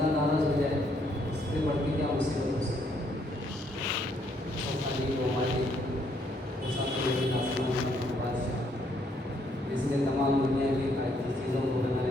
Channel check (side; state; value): both; normal; correlation 0.70